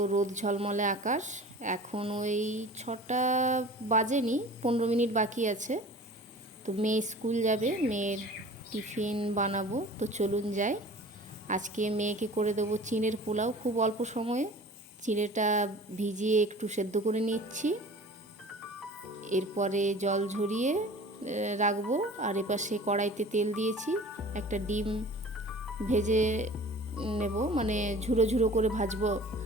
রোদ ঝলমলে আকাশ। এখন ওই 6টা বাজেনি, 15 মিনিট বাকি আছে। তো মেয়ে স্কুল যাবে, মেয়ের টিফিন বানাবো। তো চলুন যাই। আজকে মেয়েকে করে দেবো চিঁড়ের পোলাও খুব অল্প সময়ে। চিঁড়েটা ভিজিয়ে একটু সেদ্ধ করে নিচ্ছি, এরপরে জল ঝরিয়ে রাখবো। আর এপাশে কড়াইতে তেল দিয়েছি, একটা ডিম ভেজে নেব, মানে ঝুরো ঝুরো করে ভাজবো।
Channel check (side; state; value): both; normal; correlation 0.43